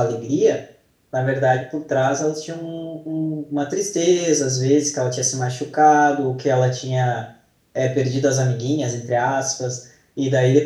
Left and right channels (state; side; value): identical; both; correlation 1.00